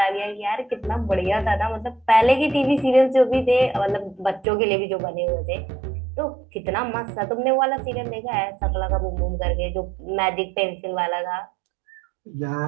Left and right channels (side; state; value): left; drops out; at 4.5 s